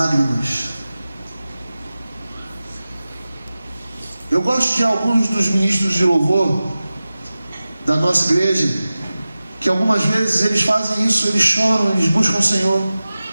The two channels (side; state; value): both; inverted; correlation -0.95